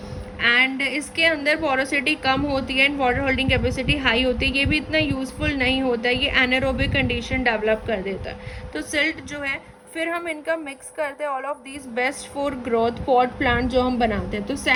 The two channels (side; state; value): both; identical; correlation 1.00